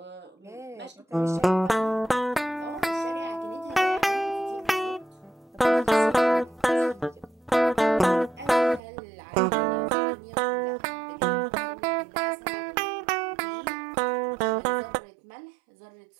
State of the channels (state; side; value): drops out; left; at 8.8 s